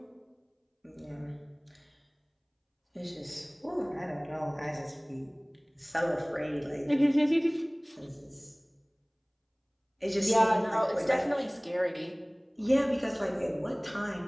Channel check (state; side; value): identical; both; correlation 1.00